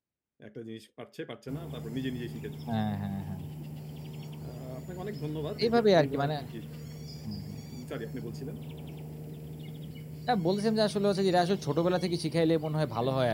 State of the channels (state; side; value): identical; both; correlation 1.00